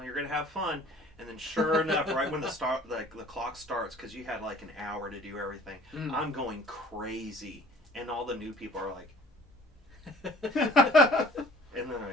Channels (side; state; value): both; normal; correlation 0.51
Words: gonna have fun." And then, sure enough, right when the clock starts, because you had like an hour to do everything, I'm going crazy, and all the new people are like, and they're